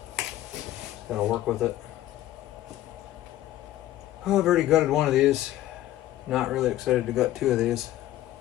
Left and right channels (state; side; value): quieter; right; 14.2 dB